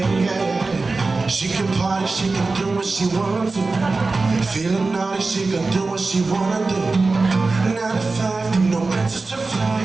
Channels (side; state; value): left; quieter; 3.7 dB